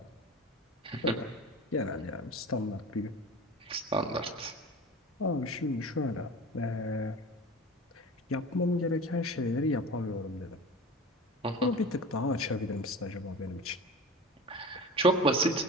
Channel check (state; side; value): normal; both; correlation 0.34